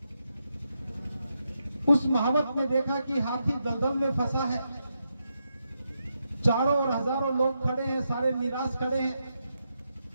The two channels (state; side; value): inverted; both; correlation -0.84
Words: उस महावत ने देखा कि हाथी दलदल में फंसा है, चारों और हजारों लोग खड़े हैं, सारे निराश खड़े हैं।